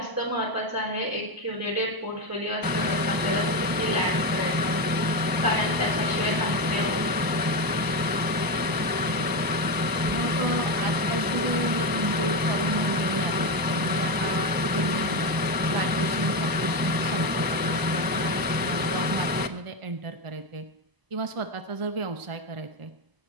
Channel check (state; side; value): late; left; 1.0 ms